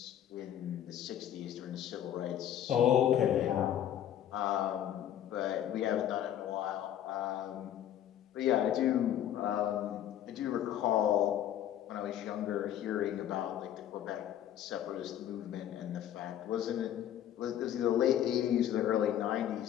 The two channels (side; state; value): right; quieter; 10.9 dB